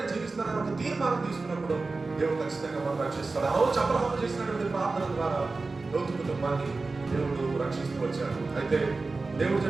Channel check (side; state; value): left; quieter; 3.7 dB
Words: జీవిస్తానని ఒక తీర్మానం తీసుకున్నప్పుడు దేవుడు ఖచ్చితంగా మనం రక్షిస్తాడు. ఆ రోజు అబ్రహాము చేసినటువంటి ప్రార్థన ద్వారా లోతు కుటుంబాన్ని దేవుడు రక్షిస్తూ వచ్చాడు. అయితే దేవుడు